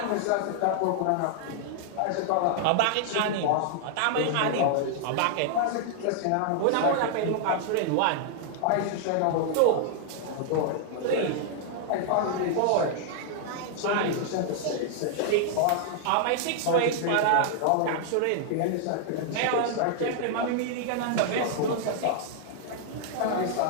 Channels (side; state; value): both; different; correlation -0.01